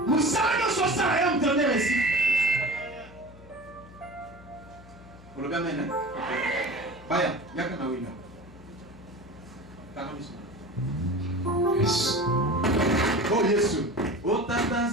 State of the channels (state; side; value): noise; left; hum, 20 dB below the sound